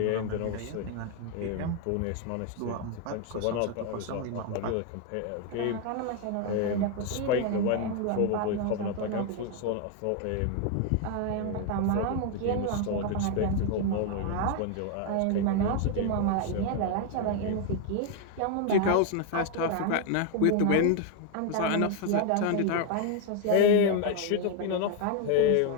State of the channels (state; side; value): different; both; correlation 0.01